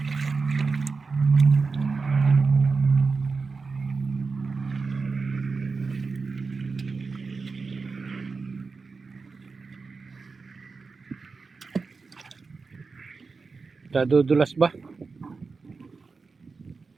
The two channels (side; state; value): left; quieter; 4.5 dB